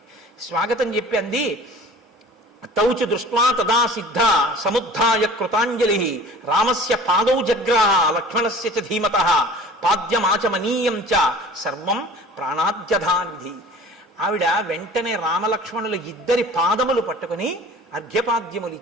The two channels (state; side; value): normal; both; correlation 0.44